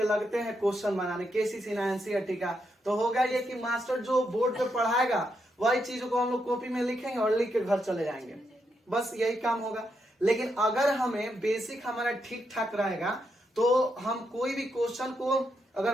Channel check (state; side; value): normal; both; correlation 0.81